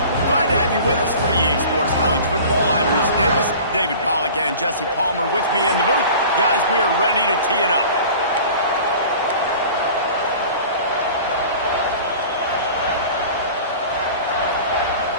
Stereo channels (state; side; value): inverted; both; correlation -0.41